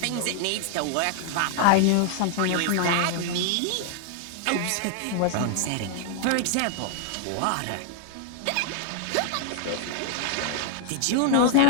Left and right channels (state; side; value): different; both; correlation 0.00